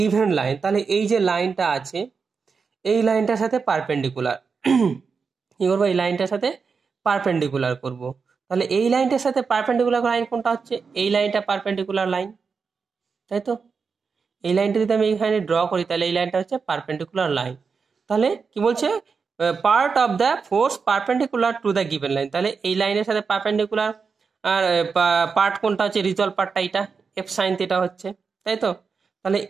line. তাহলে এই যে লাইনটা আছে, এই লাইনটার সাথে পারপেন্ডিকুলার কি করবো, এই লাইনটার সাথে পারপেন্ডিকুলার করব। তাহলে এই লাইনটার সাথে পারপেন্ডিকুলার লাইন কোনটা হচ্ছে, এই লাইনটা পারপেন্ডিকুলার লাইন, তাই তো। এই লাইনটা যদি আমি এখানে ড্র করি, তাহলে এই লাইনটা হচ্ছে পারপেন্ডিকুলার লাইন। তাহলে কি বলছে, part of the force perpendicular to the given line. তাহলে এই লাইনের সাথে পারপেন্ডিকুলার আর পার্ট কোনটা হচ্ছে, রিজলভ পার্টটা এইটা, এফ সাইন থিটা হচ্ছে, তাই তো। তাহলে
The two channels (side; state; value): left; quieter; 5.3 dB